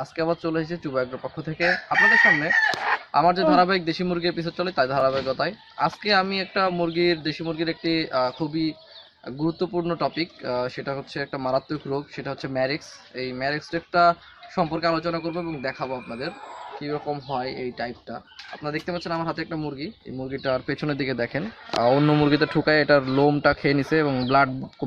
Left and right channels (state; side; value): identical; both; correlation 1.00